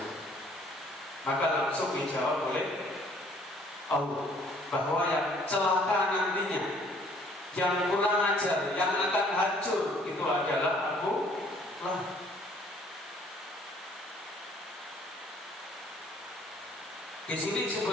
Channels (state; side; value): normal; both; correlation 0.59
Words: Maka langsung dijawab oleh Allah bahwa yang celaka nantinya, yang kurang ajar, yang akan hancur itu adalah Abu Lahab. Di sini